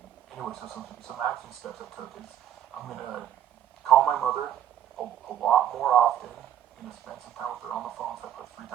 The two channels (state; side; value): quieter; left; 10.6 dB